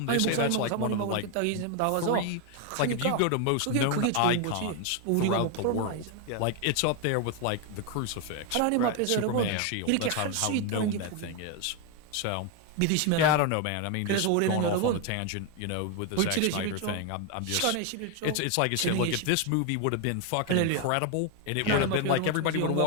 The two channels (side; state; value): both; different; correlation 0.01